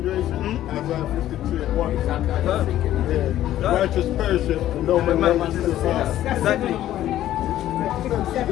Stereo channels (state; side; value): quieter; right; 12.9 dB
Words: Isaiah 53:1. Yeah. Righteous perisheth, and no man righteous is found. Exactly.